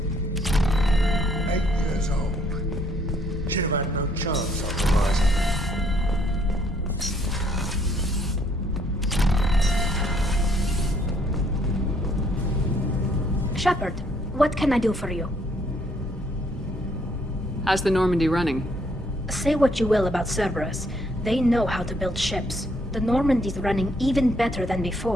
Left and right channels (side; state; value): both; normal; correlation 0.67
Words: 8 years old. She'd have had no chance on Horizon. Shepard, what can I do for you? How's the Normandy running? Say what you will about Cerberus. They know how to build ships. The Normandy's running even better than